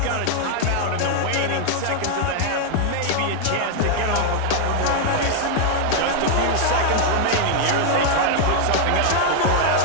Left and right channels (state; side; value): different; both; correlation 0.00